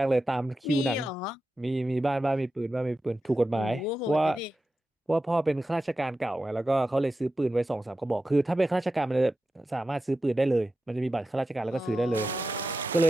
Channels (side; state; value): both; normal; correlation 0.92